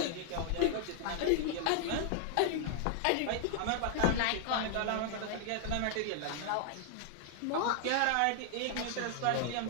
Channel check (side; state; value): both; different; correlation 0.00